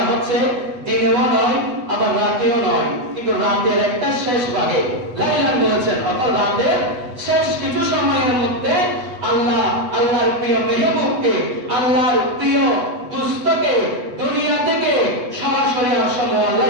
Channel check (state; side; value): late; left; 8.1 ms